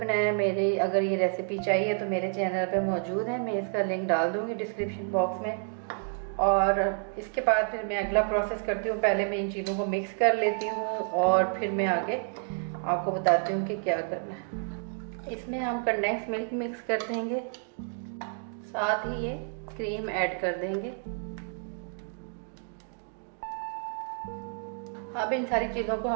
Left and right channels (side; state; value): left; silent; 58 dB below the other